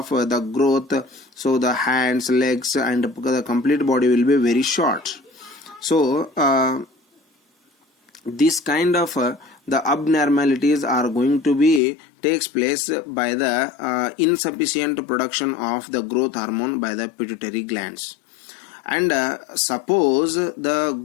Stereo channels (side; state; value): right; drops out; at 11.8 s